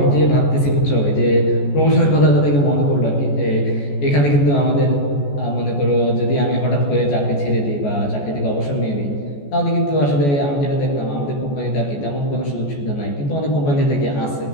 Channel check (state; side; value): late; right; 14 ms